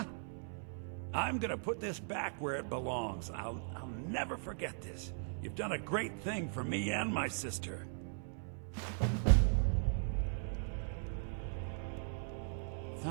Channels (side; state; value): left; silent; 52 dB below the other